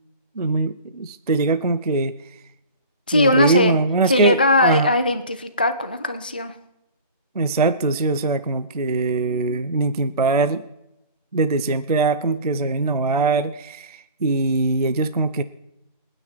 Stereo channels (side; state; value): both; inverted; correlation -0.40